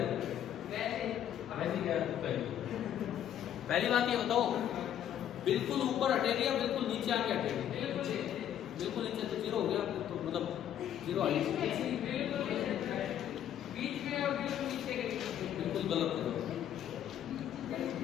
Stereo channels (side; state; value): right; quieter; 10.4 dB